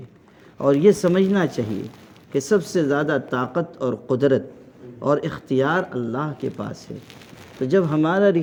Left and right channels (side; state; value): both; identical; correlation 1.00